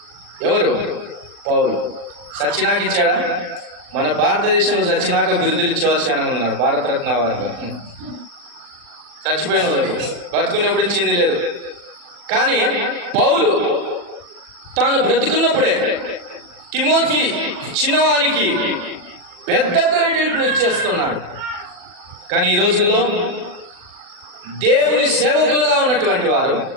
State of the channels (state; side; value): late; left; 40 ms